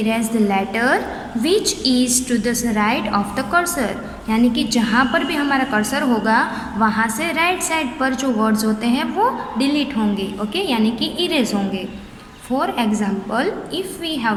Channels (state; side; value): identical; both; correlation 1.00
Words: the letter which is to the right of the cursor. यानी कि जहाँ पर भी हमारा cursor होगा वहाँ से right side पर जो वर्ड्स होते हैं वो डिलीट होंगे, ओके, यानी कि इरेज होंगे. For example, if we have